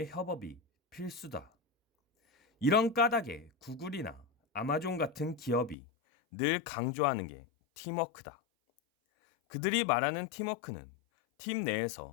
협업이 필수다. 이런 까닭에 구글이나 아마존 같은 기업이 늘 강조하는 게 팀워크다. 그들이 말하는 팀워크는 팀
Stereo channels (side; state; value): right; drops out; at 5.8 s